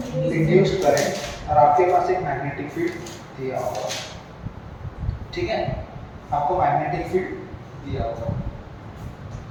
Induced current. और आपके पास एक मैग्नेटिक फील्ड दिया होगा। ठीक है, आपको मैग्नेटिक फील्ड दिया होगा।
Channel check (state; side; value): identical; both; correlation 1.00